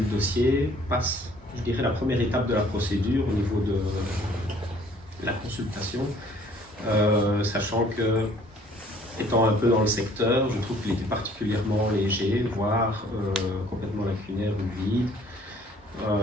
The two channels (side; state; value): both; normal; correlation 0.57